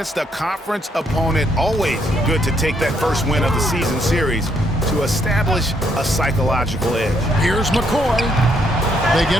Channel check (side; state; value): both; normal; correlation 0.72